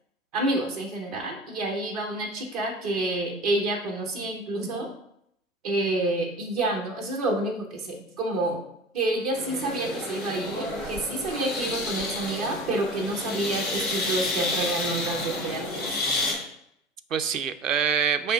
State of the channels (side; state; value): both; normal; correlation 0.37